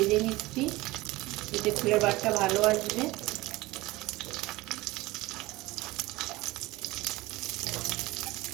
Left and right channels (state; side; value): quieter; left; 20.1 dB